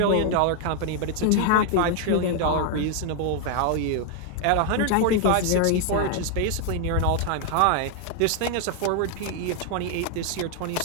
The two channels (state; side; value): different; both; correlation 0.00